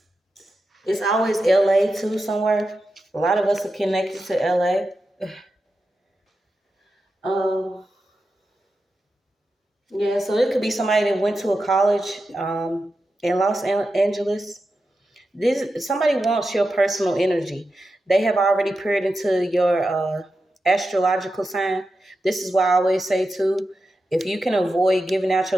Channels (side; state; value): both; normal; correlation 0.90